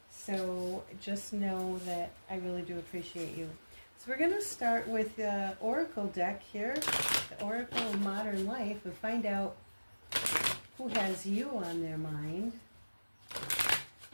So just know that I really do appreciate you. So we're going to start with the Oracle deck here, the Oracle of Modern Life, and find out who has you on their mind.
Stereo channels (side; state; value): both; inverted; correlation -1.00